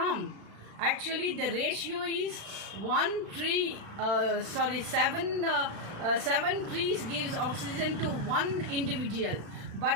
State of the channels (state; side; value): late; left; 36 ms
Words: Actually, the ratio is seven trees gives oxygen to one individual.